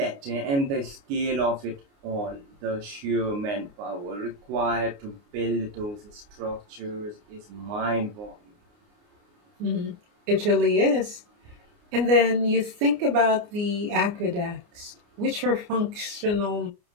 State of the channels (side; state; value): left; late; 29 ms